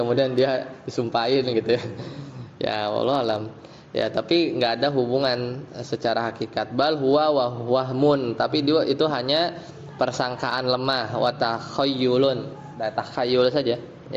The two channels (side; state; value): both; identical; correlation 1.00